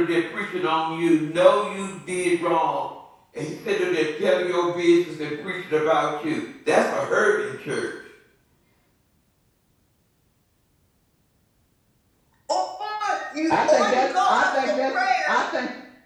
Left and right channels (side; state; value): both; identical; correlation 1.00